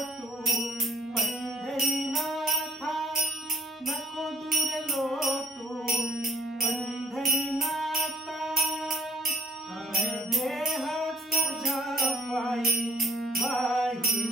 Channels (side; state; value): both; normal; correlation 0.66